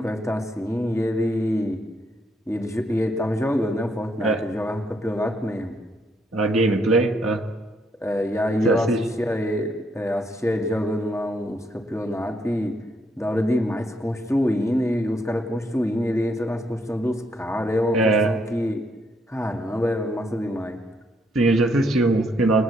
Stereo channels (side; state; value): both; normal; correlation 0.73